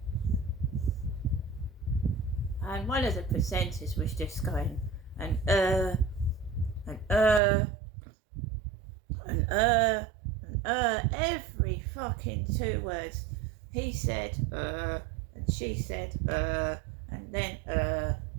And one of the presenters was just going, and every fucking 2 words. He said, and she said, and then,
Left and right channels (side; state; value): left; drops out; at 7.4 s